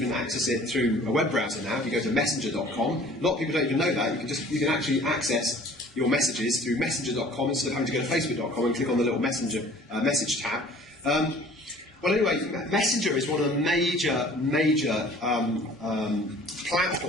access it through a web browser now. If you go to messenger.com, a lot of people don't even know that. You can actually access your messages through messenger.com instead of having to go to facebook.com and click on the little messenger message tab. Well, anyway, Messenger is one of the major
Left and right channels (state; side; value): normal; both; correlation 0.50